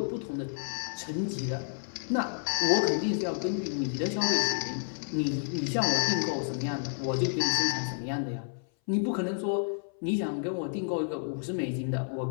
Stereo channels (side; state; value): right; silent; 58 dB below the other